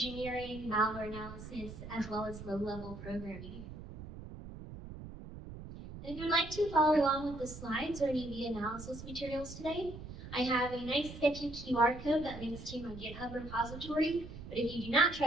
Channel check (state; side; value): noise; right; rumble, 12 dB below the sound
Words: malware analysis, as well as low-level programming. And if you'd like to follow along with the slides or any of the analysis materials today, I have a nice sketchy QR code that links to my GitHub repository. But if you do not